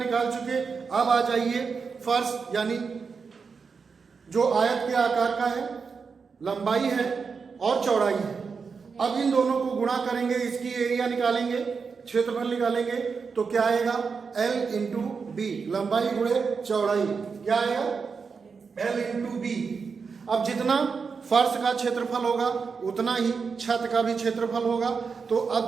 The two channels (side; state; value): left; quieter; 5.4 dB